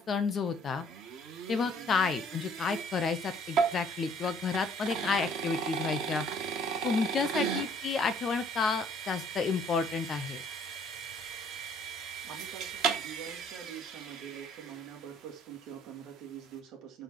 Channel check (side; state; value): both; normal; correlation 0.60